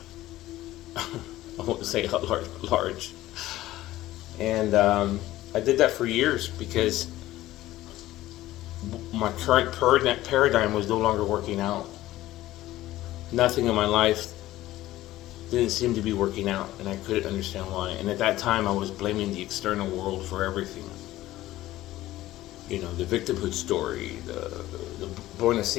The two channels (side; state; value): right; quieter; 15.7 dB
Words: I won't say how large. And I did that for years because my current paradigm was no longer working out. Nothing in my life didn't seem to be working out, and I couldn't understand why. And at that time, I was blaming the external world for everything. The victimhood story, the born of